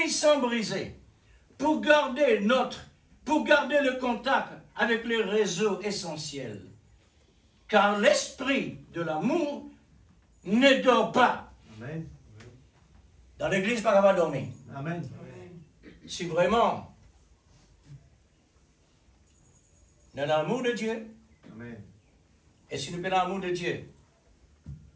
sans briser, pour garder le contact avec le réseau essentiel. Car l'esprit de l'amour ne dort pas. Amen. Dans l'église, pas capable de dormir. Amen. Si vraiment, dans l'amour de Dieu, Amen. et si nous prenons l'amour de Dieu,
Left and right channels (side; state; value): both; identical; correlation 1.00